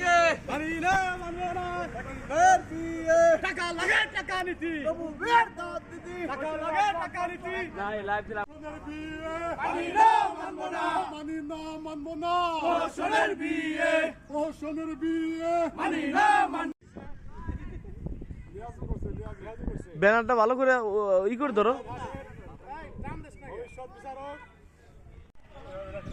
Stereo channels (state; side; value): identical; both; correlation 1.00